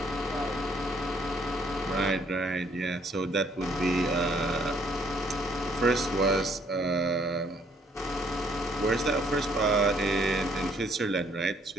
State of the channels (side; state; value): both; normal; correlation 0.65